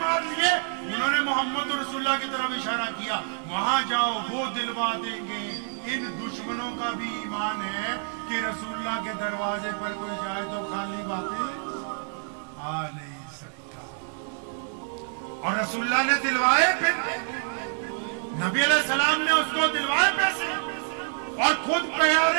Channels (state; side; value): silent; left; digital silence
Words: لیے، انہوں نے محمد رسول اللہ کی طرف اشارہ کیا، وہاں جاؤ وہ دلوا دیں گے۔ ان دشمنوں کا بھی ایمان ہے کہ رسول اللہ کے دروازے پر کوئی جائے تو خالی واپس آ نہیں سکتا، اور رسول اللہ نے دلوائے، پھر نبی علیہ السلام نے اس کو دلوائے پیسے، اور خود